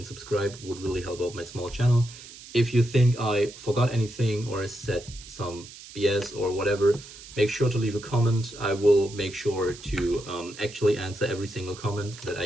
subscribe. It would really help out my small channel. If you think I forgot anything or I said some BS or whatever, make sure to leave a comment. I will make sure to actually answer every single comment that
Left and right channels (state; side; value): noise; right; hiss, 17 dB below the sound